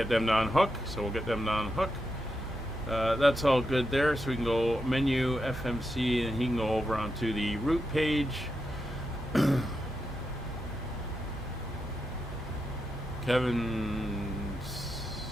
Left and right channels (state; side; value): normal; both; correlation 0.86